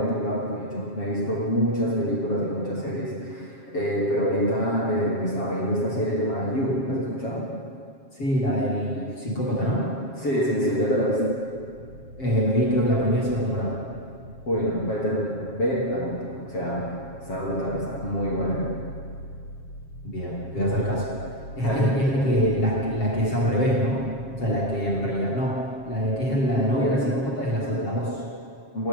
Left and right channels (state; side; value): late; right; 7.5 ms